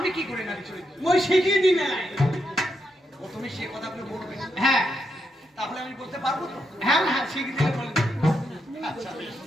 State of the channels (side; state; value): both; normal; correlation 0.81